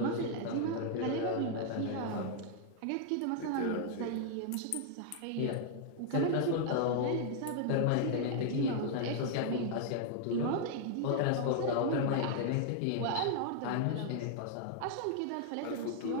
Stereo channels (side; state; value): both; different; correlation 0.00